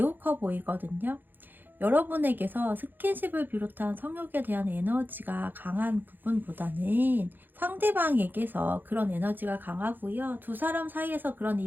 커 보이거든요. 여러분에게서 스킨십을 비롯한 성욕에 대한 에너지가 강한 부분보다는 상대방에게서 그런 에너지가 강하고요. 두 사람 사이에서 그런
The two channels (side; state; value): left; late; 0.090 ms